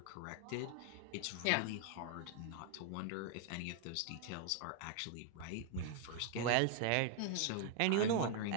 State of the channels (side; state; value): both; different; correlation 0.00